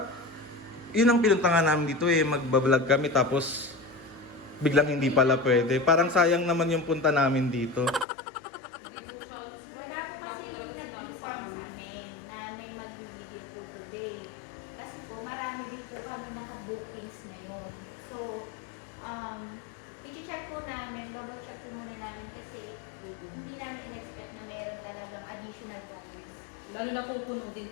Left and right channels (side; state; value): right; drops out; at 8.1 s